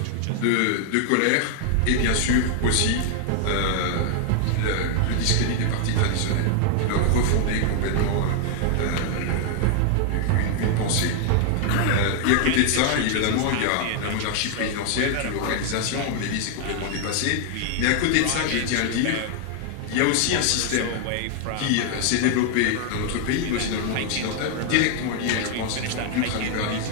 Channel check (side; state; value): both; different; correlation 0.00